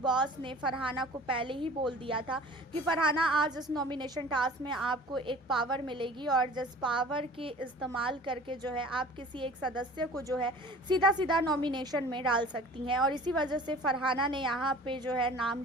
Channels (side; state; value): both; normal; correlation 0.44